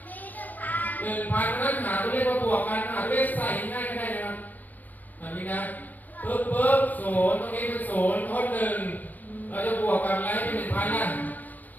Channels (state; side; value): late; right; 0.085 ms